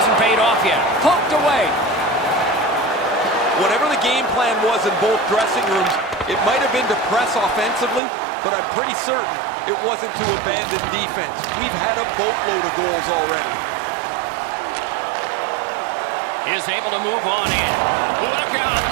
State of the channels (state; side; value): drops out; left; at 8.0 s